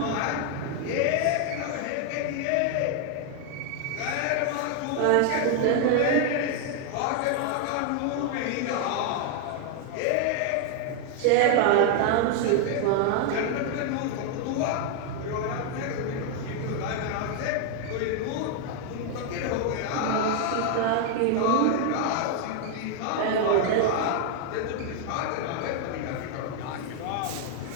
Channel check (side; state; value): both; different; correlation 0.00